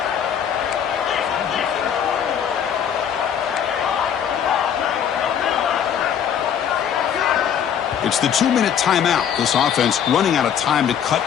It's the 2-minute timeout. This offense running out of time to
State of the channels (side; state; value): right; quieter; 8.6 dB